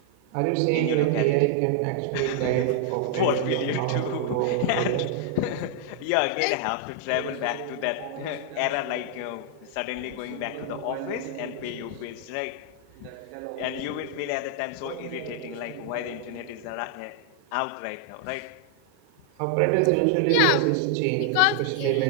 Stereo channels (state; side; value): different; both; correlation 0.00